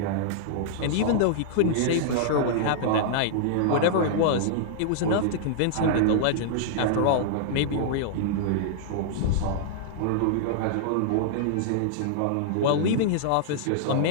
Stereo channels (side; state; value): both; different; correlation -0.01